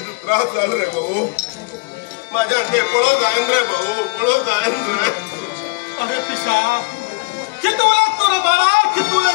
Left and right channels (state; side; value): quieter; right; 29.8 dB